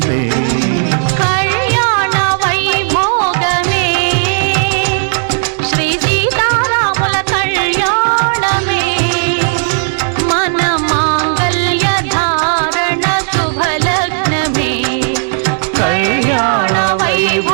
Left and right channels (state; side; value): silent; left; digital silence